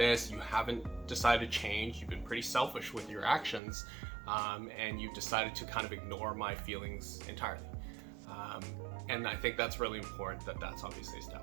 You haven't decided to change. You've been pretty selfish with your actions, and you've decided to kind of ignore my feelings entirely. And I think that's really important that that's obviously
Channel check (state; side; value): drops out; left; at 3.6 s